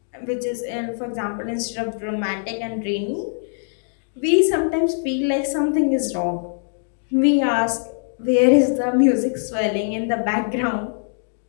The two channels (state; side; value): silent; right; digital silence